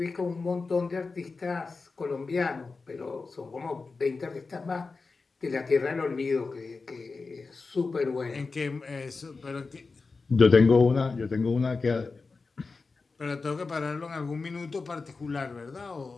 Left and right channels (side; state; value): right; quieter; 4.2 dB